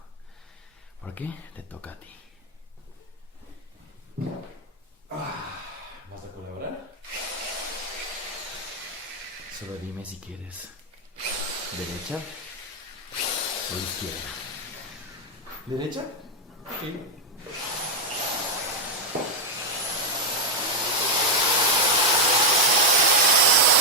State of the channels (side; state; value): both; normal; correlation 0.01